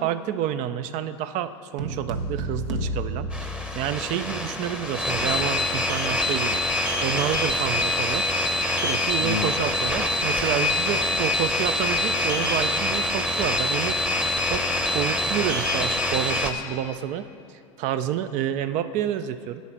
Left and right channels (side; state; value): both; normal; correlation 0.31